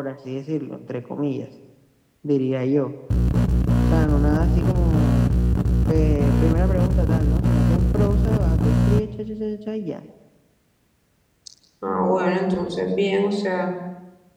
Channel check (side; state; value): both; identical; correlation 1.00